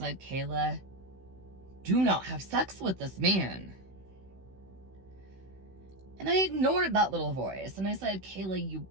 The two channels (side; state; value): left; late; 16 ms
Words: "Kayla, do not have sex with this man." And I ignored that little voice and I said, "Kayla, you